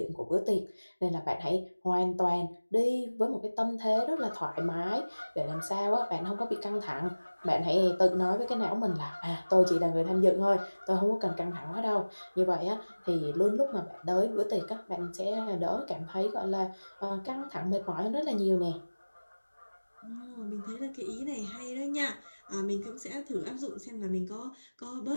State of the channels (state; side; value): inverted; both; correlation -1.00